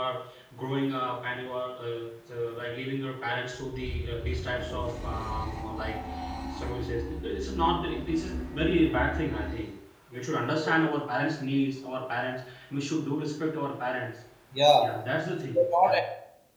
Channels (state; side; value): identical; both; correlation 1.00